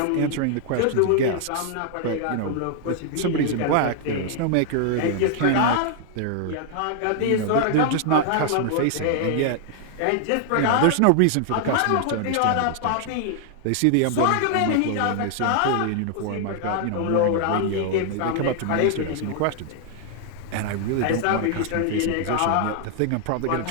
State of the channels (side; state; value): both; different; correlation 0.00